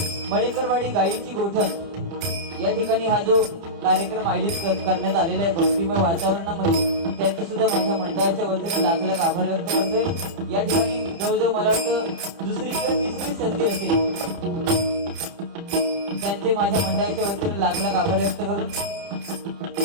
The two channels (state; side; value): late; left; 30 ms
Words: मळेकरवाडी गायीची गोठण या ठिकाणी हा जो कार्यक्रम आयोजित करण्यात आलेला आहे भक्तिमय वातावरणामध्ये त्याचे सुद्धा माझ्या मंडळाच्या वतीने लाख लाख आभार व्यक्त करतोय। या ठिकाणी जवळजवळ मला वाटतं दुसरी किंवा तिसरी संधी असेल त्यांचे माझ्या मंडळाच्या वतीने लाख लाख आभार व्यक्त करून